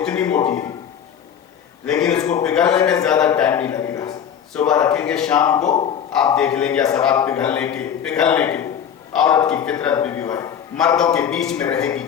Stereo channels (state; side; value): quieter; right; 8.6 dB